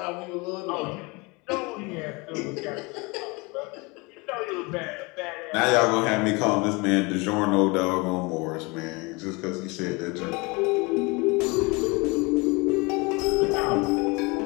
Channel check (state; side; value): quieter; right; 26.9 dB